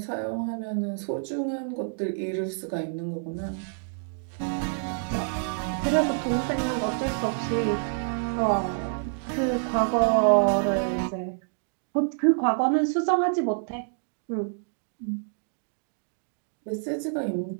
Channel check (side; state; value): left; silent; digital silence